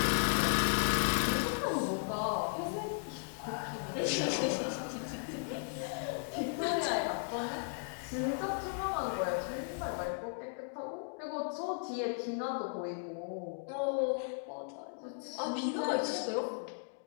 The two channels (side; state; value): right; silent; digital silence